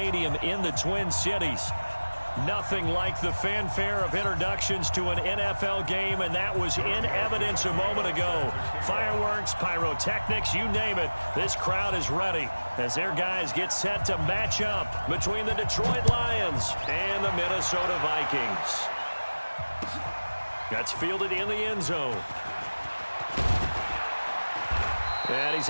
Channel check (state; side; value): inverted; both; correlation -1.00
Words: in the Twin Cities. Nothing like the fanfare of introductions to an NFL game, and that was in evidence a moment ago. Fireworks, pyrotechnics, you name it. This crowd is ready as their guys get set to match up between the Detroit Lions and the Minnesota Vikings. That's fielded in the end zone. And he's